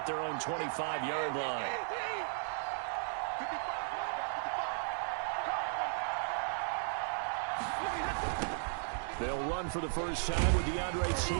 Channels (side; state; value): left; silent; digital silence